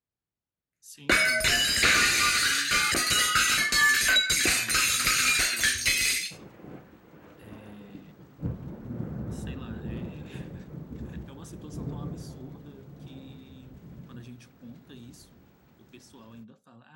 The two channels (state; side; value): identical; both; correlation 1.00